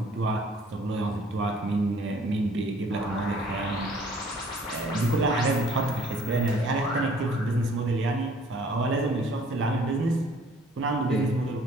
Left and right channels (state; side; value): normal; both; correlation 0.56